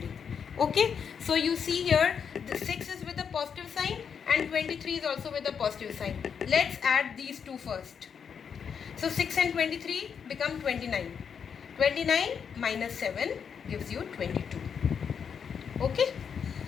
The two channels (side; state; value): right; quieter; 6.9 dB